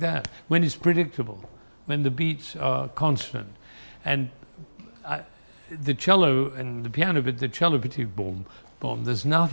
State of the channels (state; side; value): inverted; both; correlation -1.00